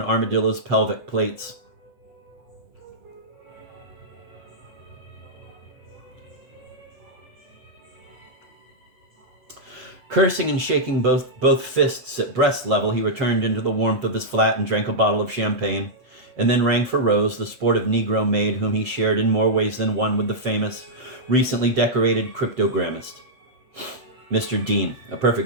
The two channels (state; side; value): late; left; 8.2 ms